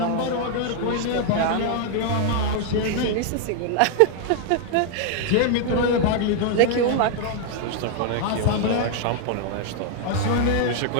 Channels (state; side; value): different; both; correlation 0.00